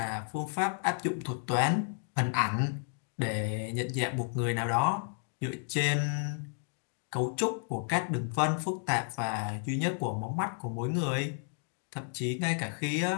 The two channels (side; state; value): right; silent; 56 dB below the other